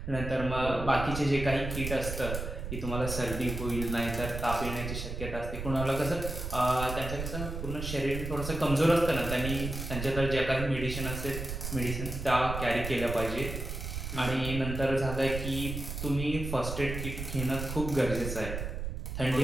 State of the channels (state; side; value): noise; right; rumble, 6 dB below the sound